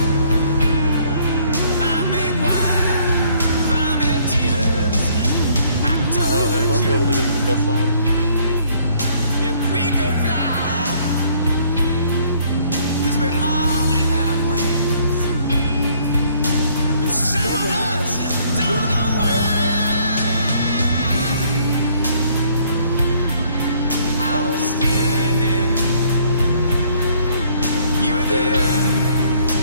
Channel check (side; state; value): both; inverted; correlation -0.62